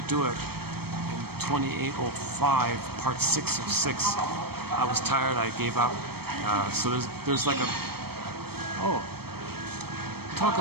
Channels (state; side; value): late; left; 0.96 ms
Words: it in 2805, part 6 of 6. I was tired, I gave up. So there's like talk